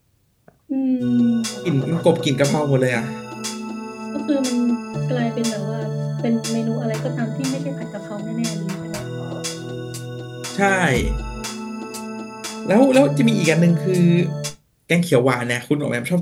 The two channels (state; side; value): identical; both; correlation 1.00